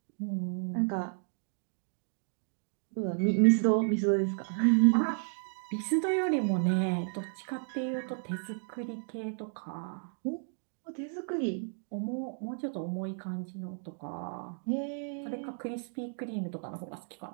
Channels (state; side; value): silent; left; 56 dB below the other